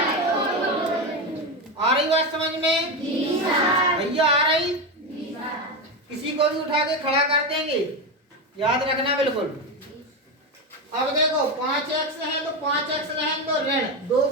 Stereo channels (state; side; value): normal; both; correlation 0.14